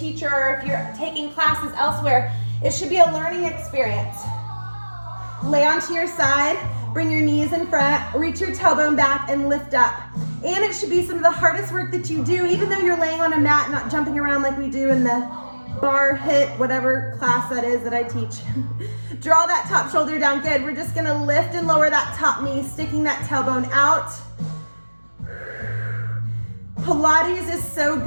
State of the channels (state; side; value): inverted; both; correlation -1.00